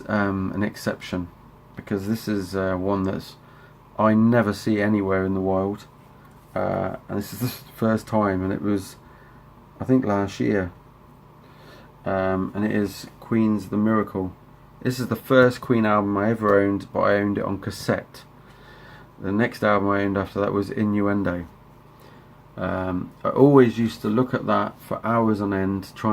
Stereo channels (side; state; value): both; identical; correlation 1.00